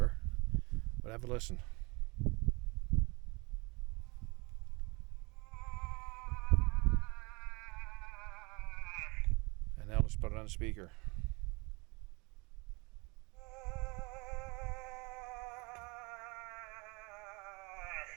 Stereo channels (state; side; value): quieter; left; 27.4 dB